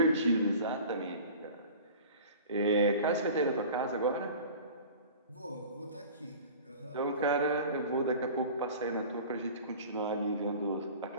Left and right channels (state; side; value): inverted; both; correlation -0.41